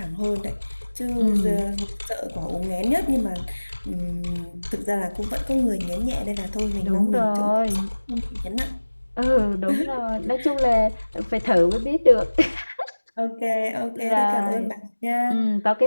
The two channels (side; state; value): both; inverted; correlation -1.00